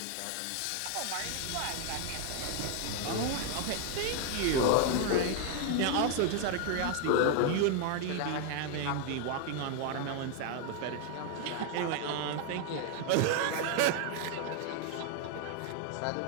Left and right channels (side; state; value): both; different; correlation 0.00